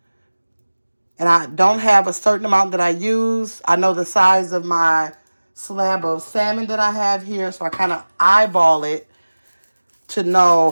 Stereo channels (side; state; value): both; inverted; correlation -1.00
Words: And I don't have a certain amount that I use. I know the size of my slab of salmon that I have here, so I kind of eyeball it to know